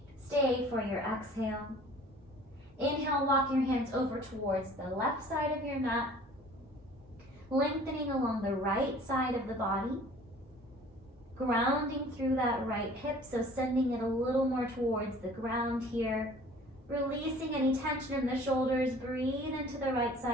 Stay for your exhale. Inhale, walk your hands over towards the left side of your mat, lengthening along the right side of the body, grounding through that right hip, so sending it a little more towards the ground here, releasing any tension in the shoulders. Breathe into the right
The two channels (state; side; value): normal; both; correlation 0.49